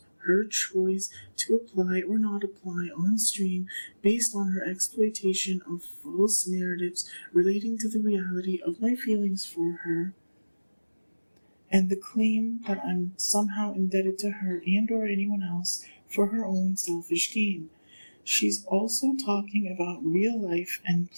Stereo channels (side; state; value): both; inverted; correlation -1.00